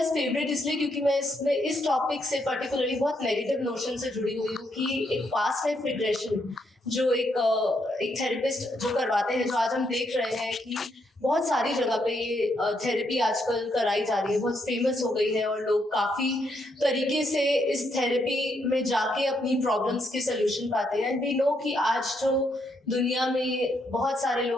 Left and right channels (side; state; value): both; normal; correlation 0.77